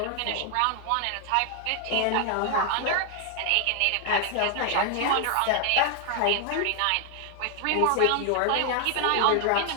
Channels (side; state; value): both; different; correlation 0.00